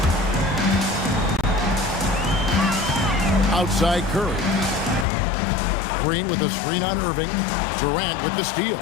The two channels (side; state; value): right; drops out; at 5.1 s